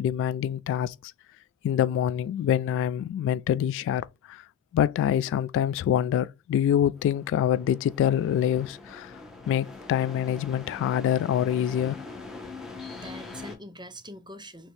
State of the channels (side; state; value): right; quieter; 9.4 dB